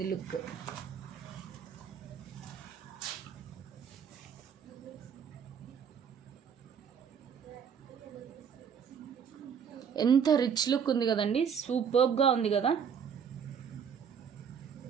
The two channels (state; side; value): quieter; left; 7.3 dB